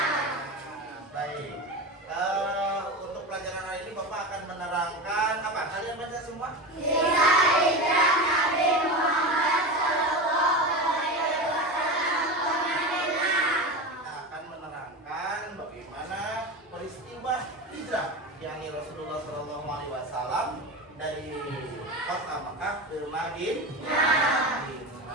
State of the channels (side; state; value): both; normal; correlation 0.24